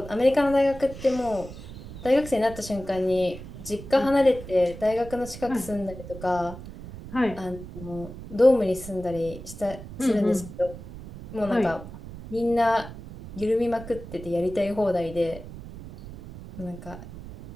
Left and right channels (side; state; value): right; noise; rumble, 13 dB below the sound